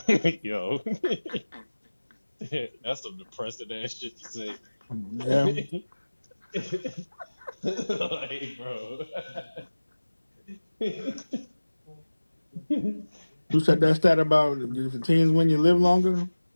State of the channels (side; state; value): both; inverted; correlation -1.00